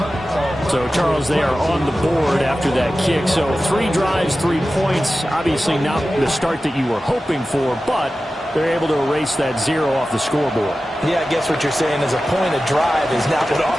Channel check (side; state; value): both; normal; correlation 0.94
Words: So, Charles, they are on the board after that kick. So 3 drives, 3 points. Obviously not the start that you were hoping for, but they're able to erase that 0 off the scoreboard. Yeah, I guess what you're saying is a point of drive is not what